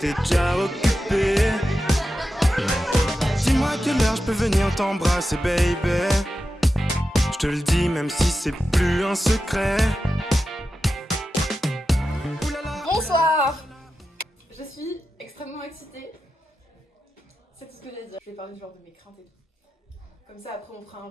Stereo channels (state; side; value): normal; both; correlation 0.91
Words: t'es déjà occupé. Dis-moi à quelle heure je peux venir t'embrasser, baby. Je te le dis même si c'est plus un secret. Bonsoir. Je suis extrêmement excitée. C'est tout ce que j'ai à dire. Je vais parler genre de mes craintes et tout. Comme ça après on fera un